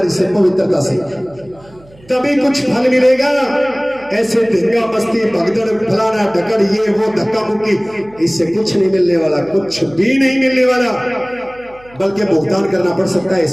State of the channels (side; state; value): right; noise; hum, 26 dB below the sound